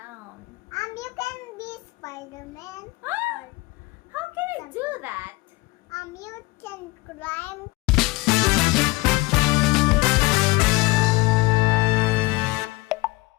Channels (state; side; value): quieter; right; 22.3 dB